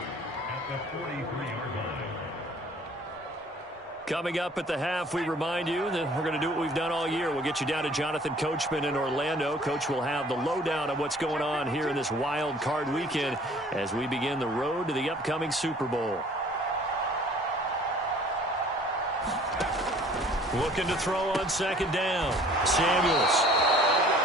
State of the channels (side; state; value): both; normal; correlation 0.53